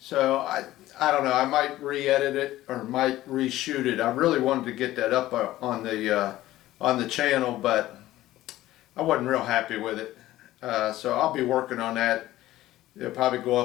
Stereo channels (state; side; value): quieter; right; 15.5 dB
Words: I don't know, I might re-edit it or might reshoot it. I really wanted to get that up on the channel, but I wasn't real happy with it. So I'll be working on that. It'll probably go